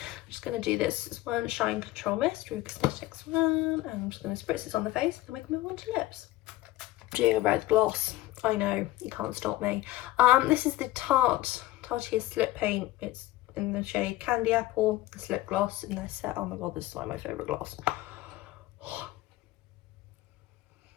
just going to do this one Shine Control Mist, Rue Cosmetics one, and I'm just going to spritz this on the face, then we can move on to lips. I'm doing a red gloss. I know, you can't stop me. This is the Tarte Slip Paint. It's in the shade Candy Apple, the slip gloss in their set. Oh my god, this is like my favourite gloss.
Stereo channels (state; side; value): quieter; right; 16.7 dB